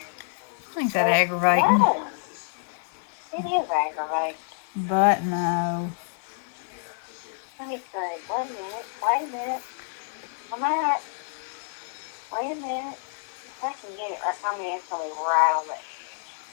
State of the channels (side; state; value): right; silent; 60 dB below the other